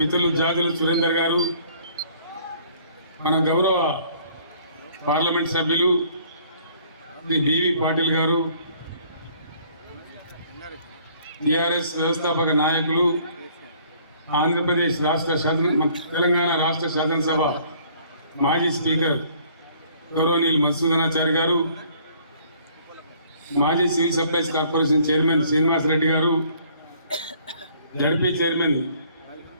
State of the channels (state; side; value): inverted; both; correlation -0.58